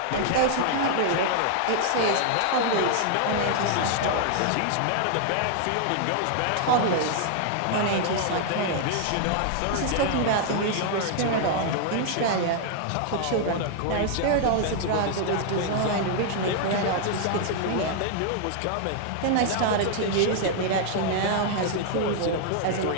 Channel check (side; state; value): both; different; correlation 0.00